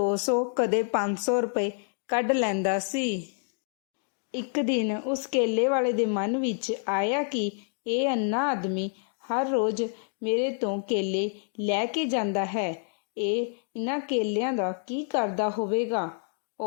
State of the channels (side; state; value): right; silent; 59 dB below the other